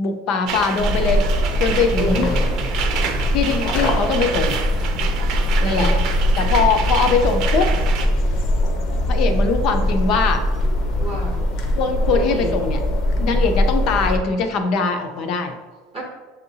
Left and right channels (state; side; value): normal; both; correlation 0.60